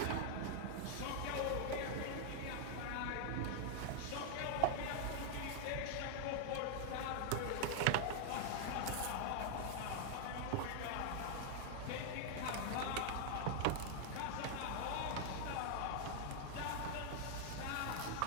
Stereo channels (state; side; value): different; both; correlation -0.01